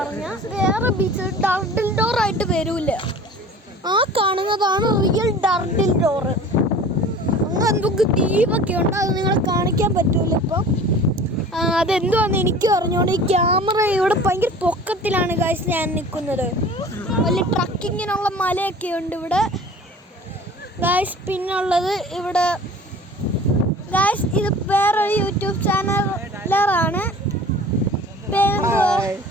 വേറെ ബീച്ച് ടർട്ടിൽ ഡോർ ആയിട്ട് വരൂല. ആ കാണുന്നതാണ് റിയൽ ടർട്ടിൽ ഡോർ. അങ്ങനെ എന്തൊക്കെ ദ്വീപൊക്കെ ഉണ്ട്, അത് നിങ്ങളെ കാണിക്കാൻ പറ്റൂല ഇപ്പം. അതെന്തുവാന്ന് എനിക്ക് പറഞ്ഞോണ്ട് ഈ ക്യാമറ ഇവിടെ ഭയങ്കര പൊക്കത്തിലാണ് ഗൈസ് ഞാൻ നിൽക്കുന്നത്. വലിയ ട്രക്കിങ്ങിനുള്ള മലയൊക്കെ ഉണ്ട് ഇവിടെ ഗൈസ്. പിന്നുള്ളത് ഇവിടെ ഗൈസ് ഇത് വേറൊരു യൂട്യൂബ് ചാനലാണ്.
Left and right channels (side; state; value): both; normal; correlation 0.43